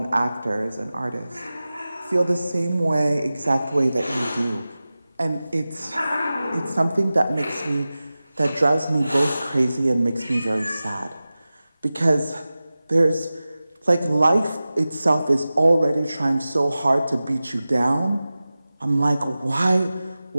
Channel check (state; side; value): inverted; both; correlation -0.96